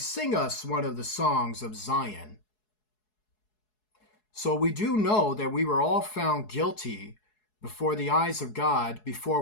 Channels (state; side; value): late; right; 4.7 ms